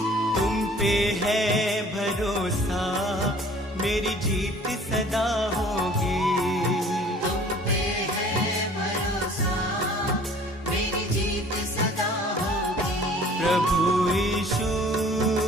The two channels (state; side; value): normal; both; correlation 0.51